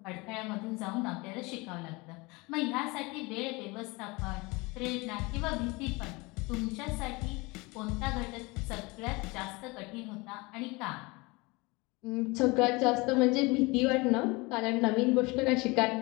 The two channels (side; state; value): right; quieter; 25.1 dB